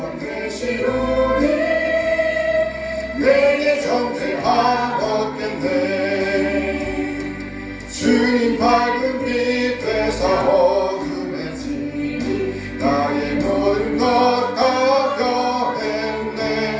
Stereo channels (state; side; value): identical; both; correlation 1.00